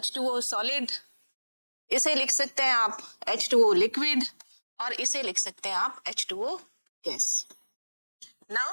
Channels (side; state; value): both; inverted; correlation -1.00